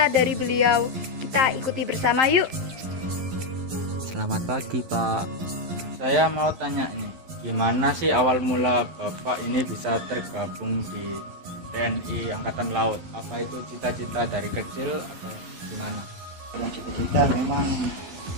dari beliau? Kita ikuti bersama yuk. Selamat pagi, Pak. Saya mau tanya nih, gimana sih awal mula Bapak ini bisa tergabung di TNI Angkatan Laut? Apa itu cita-cita dari kecil atau gimana? Kalau cita-cita memang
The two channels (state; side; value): late; left; 11 ms